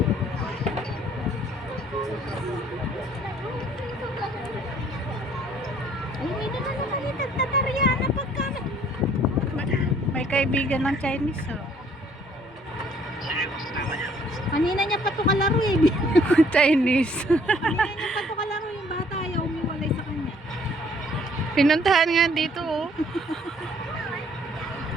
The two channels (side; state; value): both; normal; correlation 0.61